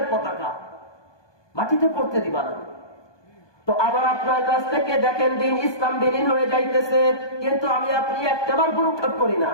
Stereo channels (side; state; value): right; late; 1.2 ms